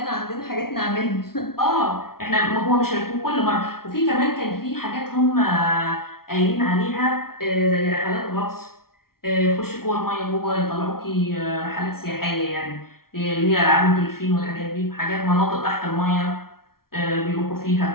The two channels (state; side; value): late; right; 0.93 ms